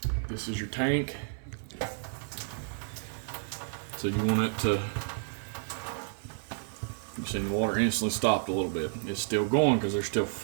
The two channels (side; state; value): left; silent; 57 dB below the other